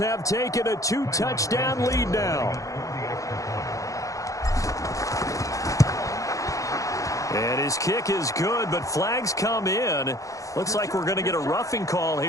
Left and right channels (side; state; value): right; late; 0.16 ms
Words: taken a 2-touchdown lead now. And his kick is good, but flags come in. Looks like we're going to get a roughing call